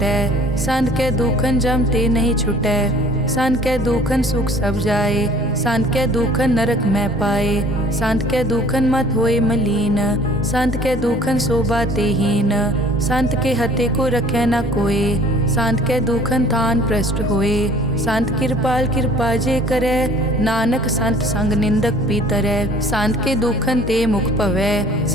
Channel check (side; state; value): both; normal; correlation 0.52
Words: संत के दुखन जम ते नहीं छुटै। संत के दुखन सुख सब जाए, संत के दुखन नरक में पाए। संत के दुखन मत होए मलीन, संत के दुखन शोभा तेहीन। संत के हते को रखे न कोय, संत के दुखन थान प्रष्ट होए। संत कृपाल कृपा जे करे, नानक संत संग निंदक भी तरै। संत के दुखन ते मुख पवै,